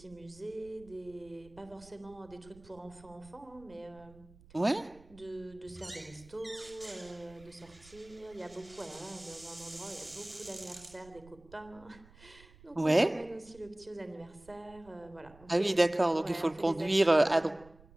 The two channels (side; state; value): right; noise; rumble, 23 dB below the sound